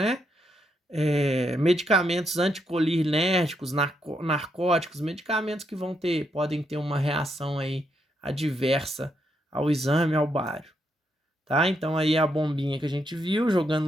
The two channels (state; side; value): normal; both; correlation 0.79